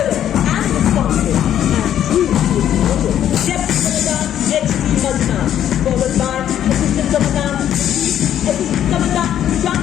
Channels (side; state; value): right; quieter; 10.6 dB